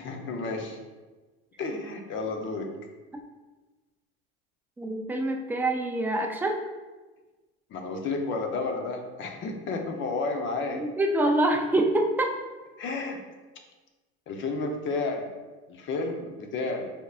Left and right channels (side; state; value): both; normal; correlation 0.44